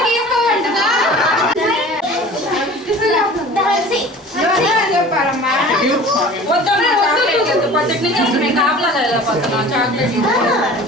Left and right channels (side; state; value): both; normal; correlation 0.42